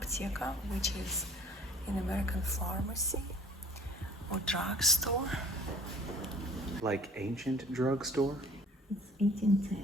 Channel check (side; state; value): both; normal; correlation 0.50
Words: which is an American pharmacy or drugstore. Like ancient drugstore? It's